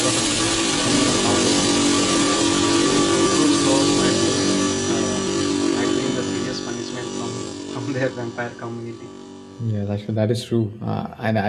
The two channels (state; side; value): identical; both; correlation 1.00